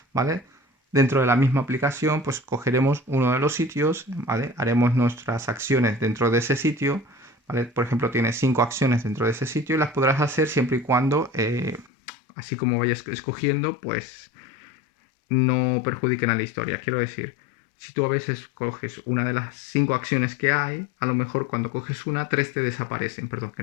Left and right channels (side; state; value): right; drops out; at 11.9 s